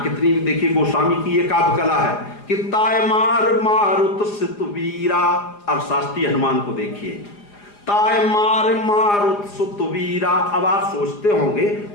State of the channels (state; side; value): late; right; 4.9 ms